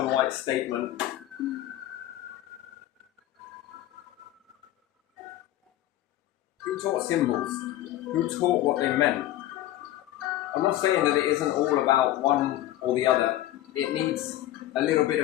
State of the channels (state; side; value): quieter; right; 14.2 dB